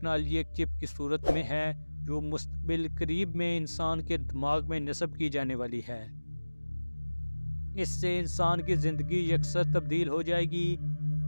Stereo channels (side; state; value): both; inverted; correlation -1.00